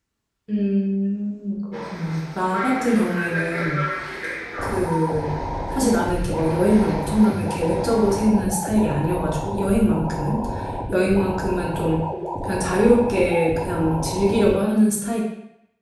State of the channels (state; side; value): identical; both; correlation 1.00